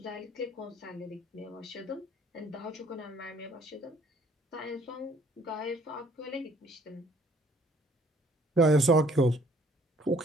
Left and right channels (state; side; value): normal; both; correlation 0.60